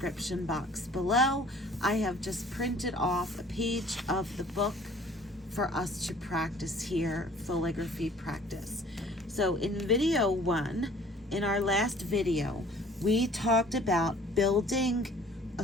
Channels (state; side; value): normal; both; correlation 0.52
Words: box below. I have just printed off a page of the book for us to practice here, Fauxligraphy practice. So in video 1, in our last video, we talked about building a